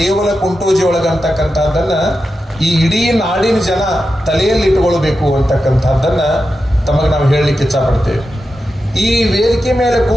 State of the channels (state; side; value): normal; both; correlation 0.90